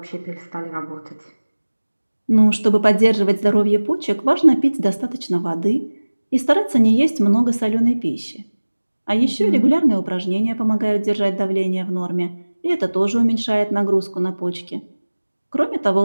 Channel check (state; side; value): inverted; both; correlation -1.00